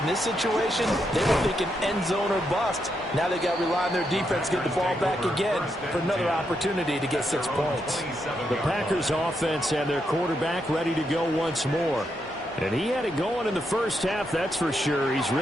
this situation they were thinking end zone or bust. Now they got to rely on their defense, get the ball back again for another opportunity to get 6 points. The Packers offense and their quarterback ready to go once more. And he had it going in the first half, that's for sure. He's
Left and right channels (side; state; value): both; normal; correlation 0.81